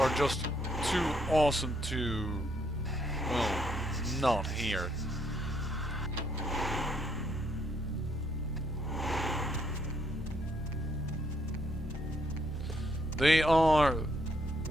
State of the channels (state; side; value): normal; both; correlation 0.72